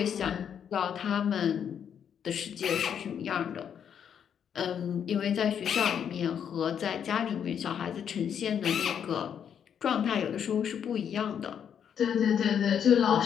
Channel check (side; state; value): right; quieter; 8.3 dB